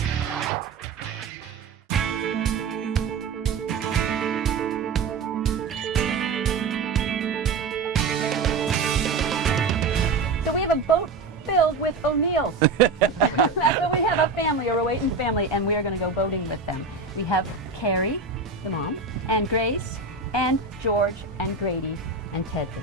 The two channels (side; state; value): left; quieter; 4.2 dB